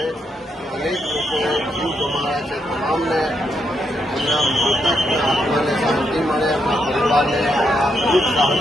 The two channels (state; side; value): normal; both; correlation 0.79